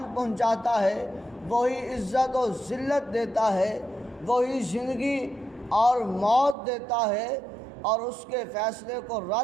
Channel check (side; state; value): left; drops out; at 6.6 s